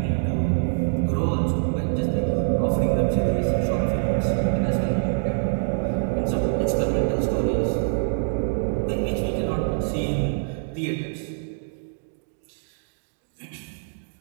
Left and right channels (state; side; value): silent; left; digital silence